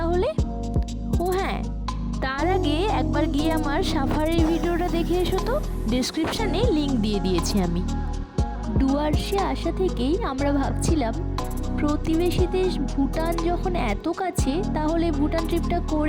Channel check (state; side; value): identical; both; correlation 1.00